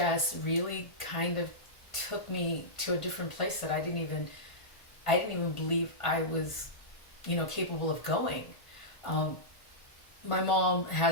really kind of took me to a different place that I didn't even believe I was, capable of going. Um, my mom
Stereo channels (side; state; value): right; late; 1.4 ms